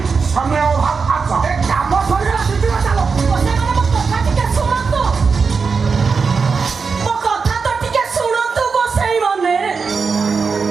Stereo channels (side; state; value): left; quieter; 5.1 dB